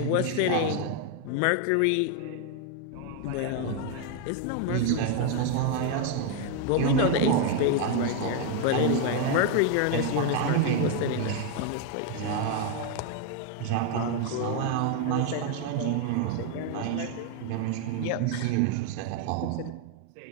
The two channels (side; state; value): both; different; correlation 0.01